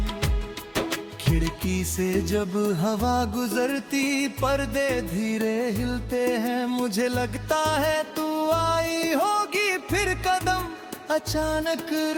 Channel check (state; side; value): identical; both; correlation 1.00